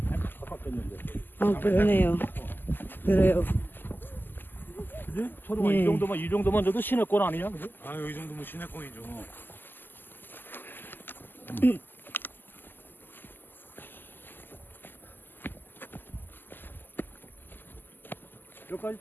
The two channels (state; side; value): late; right; 0.091 ms